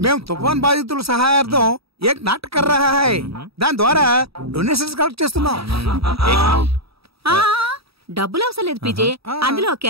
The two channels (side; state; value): left; late; 0.77 ms